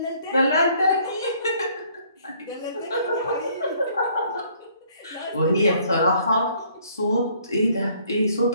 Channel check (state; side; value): inverted; both; correlation -0.62